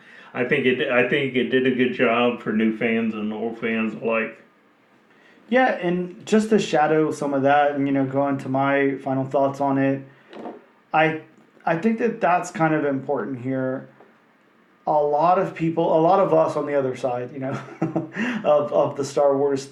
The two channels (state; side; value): identical; both; correlation 1.00